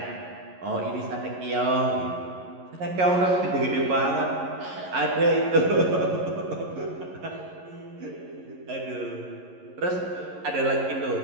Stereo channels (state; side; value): late; left; 11 ms